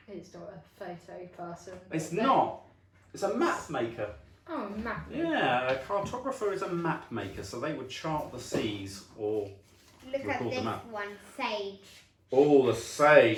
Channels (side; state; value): both; identical; correlation 1.00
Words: it's not a photo person? It's not. It's a map maker. Oh, a map. Yeah, a cartographer is a map maker. So they would chart the seas or... Look at Record this them up. one, Sage. Oh, the